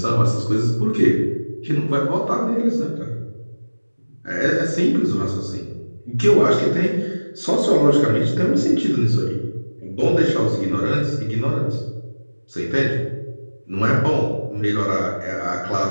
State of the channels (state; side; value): inverted; both; correlation -1.00